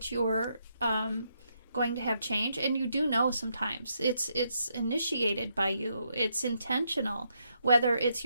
you're going to have change, and you do know sometimes, it's initiated by you. It's intentional. Whether it's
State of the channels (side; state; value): both; inverted; correlation -0.78